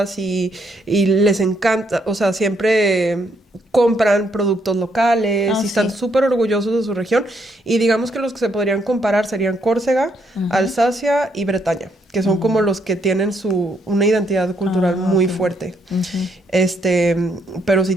y les encanta, o sea, siempre compran productos locales y están sí. súper orgullosos de su región. Y digamos que los que se podrían comparar serían Córcega, Alsacia y Bretaña, que son como los que tienen una identidad cultural muy Ok. fuerte. Pero sí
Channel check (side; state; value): both; normal; correlation 0.74